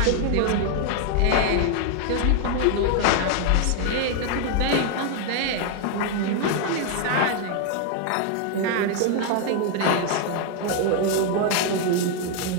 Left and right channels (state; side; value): different; both; correlation 0.00